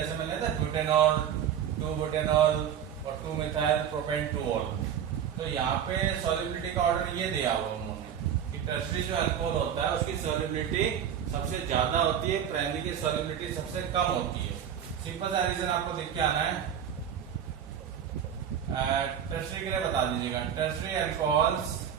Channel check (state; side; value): quieter; left; 9.0 dB